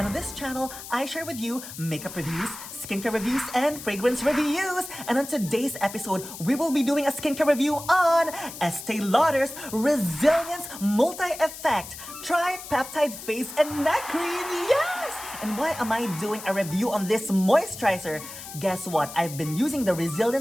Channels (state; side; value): noise; left; hiss, 12 dB below the sound